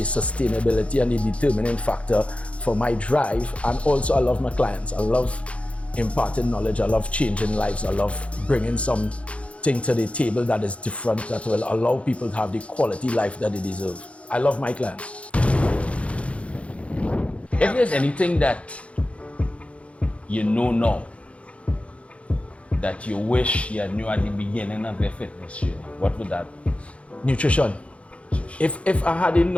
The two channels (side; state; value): right; late; 0.062 ms